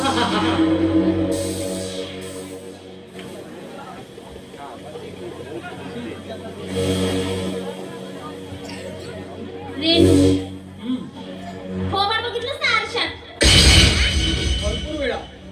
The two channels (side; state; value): both; identical; correlation 1.00